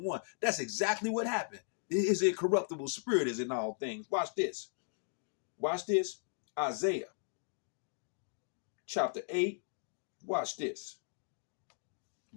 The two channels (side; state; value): right; silent; digital silence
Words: That's exactly what happened. His incorruptible spirit is in all things. Watch this. Watch this. Isaiah chapter 8, Watch this.